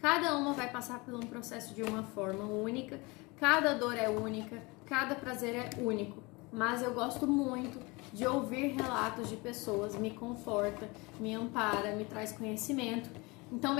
uma vai passar por um processo de uma forma única. Cada dor é única, cada prazer é único. Mas eu gosto muito de ouvir relatos de pessoas, me conforta, me ampara, me traz conhecimento. Então,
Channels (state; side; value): quieter; right; 25.6 dB